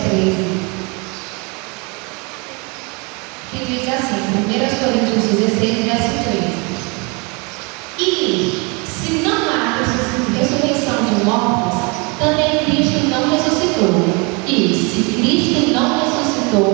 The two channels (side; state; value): left; quieter; 30.3 dB